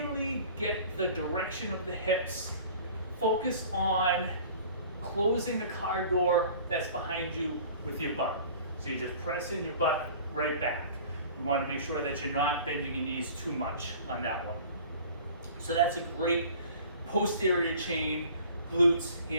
get the direction of the hips, focus on closing the car door that's behind you with your butt. So you're just pressing your butt right back. You want to make sure that you're not bending your knees too much on that one. So that's a great posterior chain, glutes,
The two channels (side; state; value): both; inverted; correlation -0.46